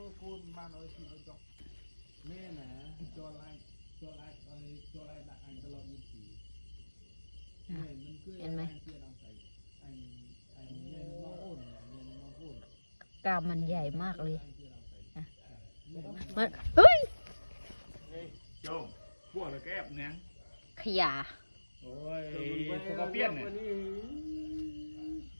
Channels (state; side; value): inverted; both; correlation -1.00